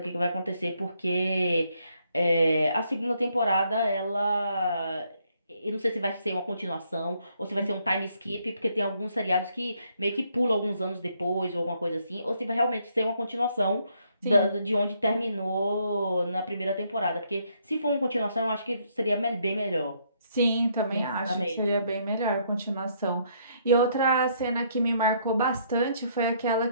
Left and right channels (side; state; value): both; inverted; correlation -0.71